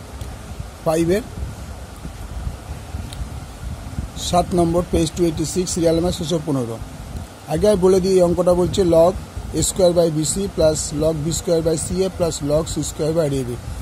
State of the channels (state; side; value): identical; both; correlation 1.00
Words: 5 এর 7 নম্বর page 286 serial number 615 আগে আমি বলে দিই এই অঙ্কটা বলছে log a square by bc plus log b square by ca plus log c square by ab